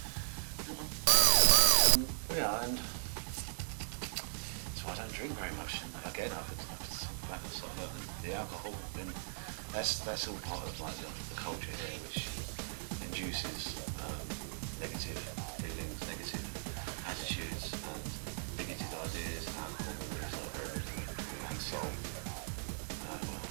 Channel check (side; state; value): left; silent; digital silence